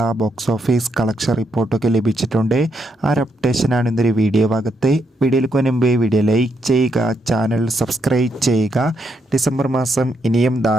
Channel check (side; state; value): both; normal; correlation 0.79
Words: ബോക്സ് ഓഫീസ് കളക്ഷൻ റിപ്പോർട്ടൊക്കെ ലഭിച്ചിട്ടുണ്ട്. ആ ഒരു അപ്ഡേഷനാണ് ഇന്നൊരു വീഡിയോ ഭാഗത്ത്. വീഡിയോയിലേക്ക് മുൻപ് വീഡിയോ ലൈക്ക് ചെയ്യുക, ചാനൽ സബ്സ്ക്രൈബ് ചെയ്യുക. ഡിസംബർ മാസം ഇനിയും